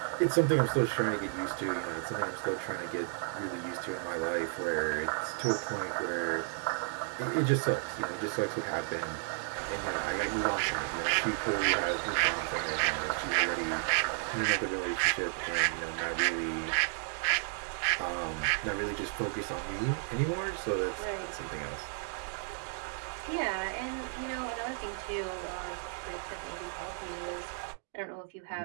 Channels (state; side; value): silent; left; 56 dB below the other